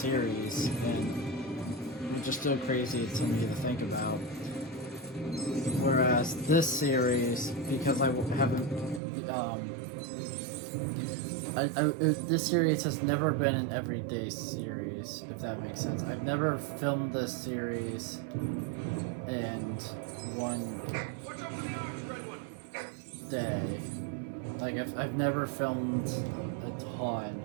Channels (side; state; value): left; drops out; at 9.0 s